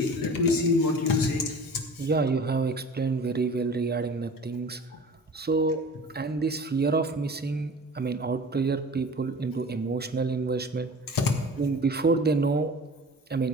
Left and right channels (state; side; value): normal; both; correlation 0.40